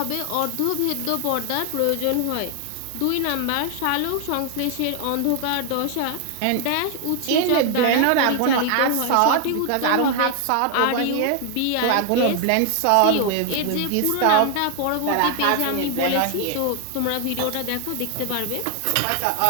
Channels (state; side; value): different; both; correlation 0.00